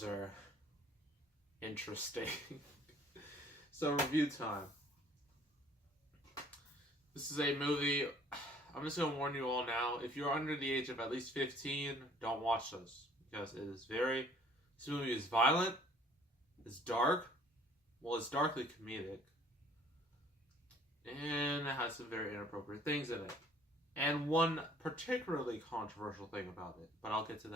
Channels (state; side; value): normal; both; correlation 0.56